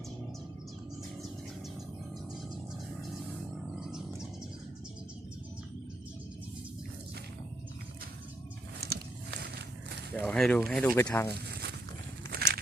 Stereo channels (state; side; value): normal; both; correlation 0.77